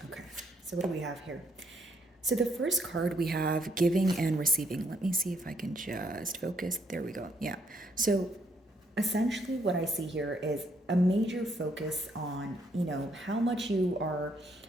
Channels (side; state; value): both; normal; correlation 0.71